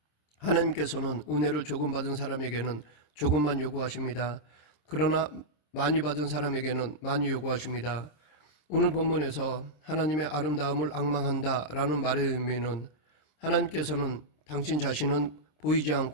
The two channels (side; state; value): right; late; 26 ms